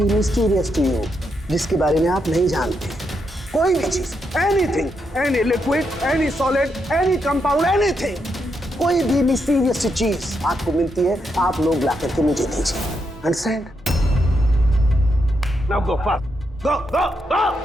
mysterious to you, जिसके बारे में आप नहीं जानते, कोई भी चीज, anything, any liquid, any solid, any compound, anything, कोई भी मिस्टीरियस चीज आपको मिलती है, आप लोग ला करके मुझे दीजिए। Understand? Now go fast, go go go.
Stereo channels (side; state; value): both; normal; correlation 0.81